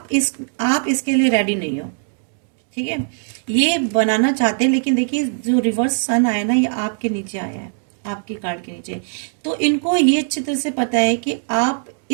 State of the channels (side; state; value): left; silent; digital silence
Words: इसके लिए रेडी नहीं हो, ठीक है। ये बनाना चाहते हैं, लेकिन देखिए जो रिवर्स सन आया ना, ये आपके नीचे आया है, आपकी कार्ड के नीचे। तो इनको ये अच्छी तरह से पता है कि आप